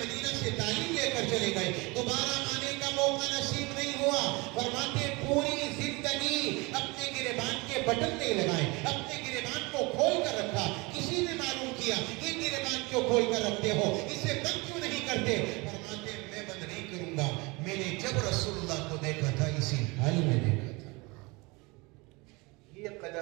سے تعلیم لے کر چلے گئے. دوبارہ آنے کا موقع نصیب نہیں ہوا. فرماتے پوری زندگی اپنے گریبان کے بٹن نہیں لگائے, اپنے گریبان کو کھول کر رکھا. کسی نے معلوم کیا یہ گریبان کیوں کھول کر رکھتے ہو, اسے بند کیوں نہیں کرتے. فرماتے میں بند نہیں کروں گا, میں نے جب رسول اللہ کو دیکھا تھا اسی حال میں دیکھا تھا. یہ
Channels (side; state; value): left; quieter; 25.8 dB